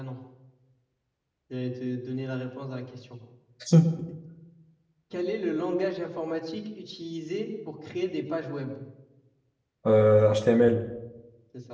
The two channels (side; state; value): both; identical; correlation 1.00